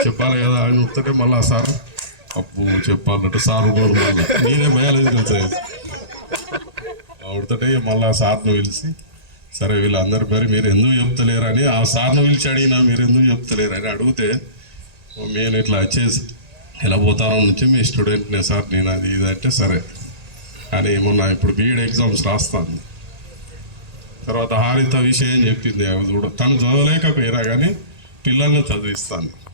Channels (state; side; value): late; left; 1.8 ms